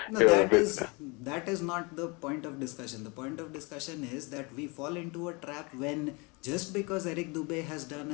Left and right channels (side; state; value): right; quieter; 28.5 dB